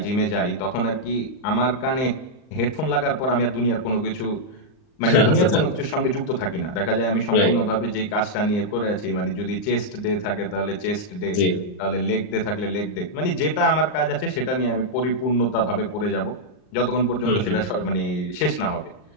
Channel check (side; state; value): right; late; 39 ms